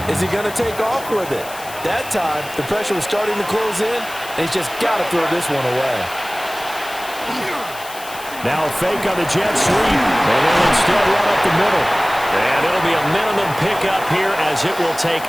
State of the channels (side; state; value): left; noise; hiss, 15 dB below the sound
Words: he going to take off with it? That time, the pressure was starting to close in, and he's just got to throw this one away. Now a fake on the jet sweep, and they'll instead run up the middle. And it'll be a minimum pickup here as it will take